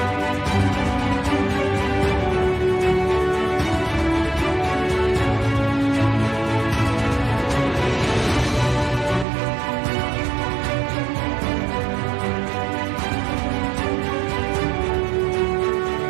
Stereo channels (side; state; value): left; drops out; at 9.2 s